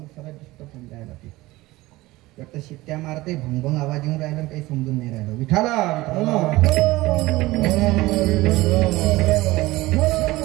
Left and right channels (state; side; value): quieter; left; 19.1 dB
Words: सरळ डिस्टर्ब होऊन जायला. ते फक्त शिट्ट्या मारते, भंगभंग आवाज येऊन राहिला, काही समजून नाही राहिलं. विठाला